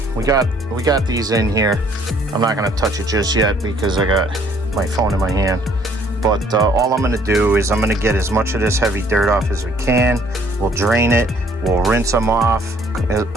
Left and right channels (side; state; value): both; normal; correlation 0.61